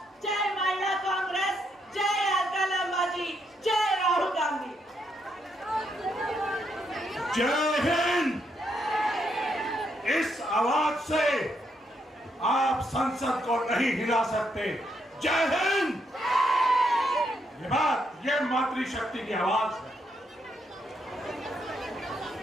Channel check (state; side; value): normal; both; correlation 0.77